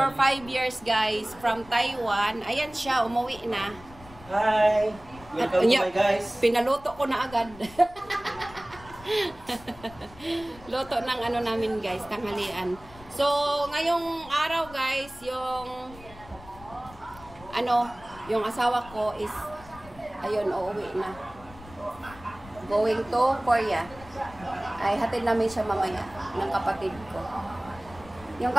5 years guys from Taiwan. Ayan siya, umuwi na. Hi. Welcome to my guys. Pinaluto ko na agad. Luto ng namin guys, tanghalian. So, ngayong araw guys, yung asawa ko is ayun, uuwi na. Going to Korea. Ay, hatid namin siya mamaya ng kapatid ko. Yung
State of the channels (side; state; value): left; noise; rumble, 20 dB below the sound